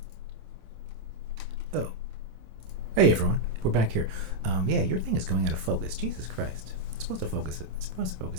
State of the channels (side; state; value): left; late; 26 ms